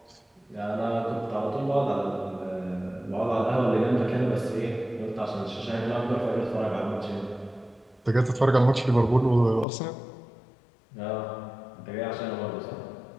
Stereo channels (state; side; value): drops out; right; at 9.7 s